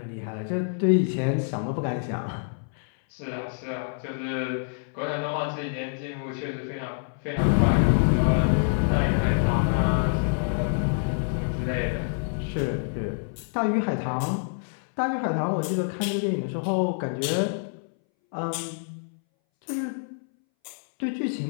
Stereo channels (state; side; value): silent; right; 60 dB below the other